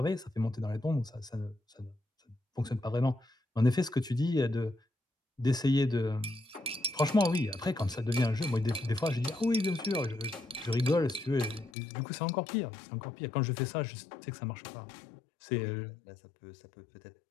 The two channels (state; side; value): drops out; right; at 11.7 s